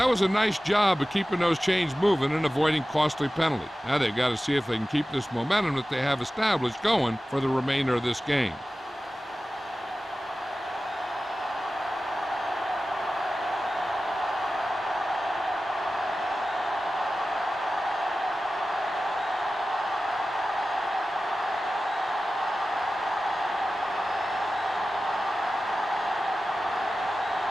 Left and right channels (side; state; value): both; normal; correlation 0.95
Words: was a nice job of keeping those chains moving and avoiding costly penalty. Now they've got to see if they can keep this momentum that they have established going for the remainder of this game.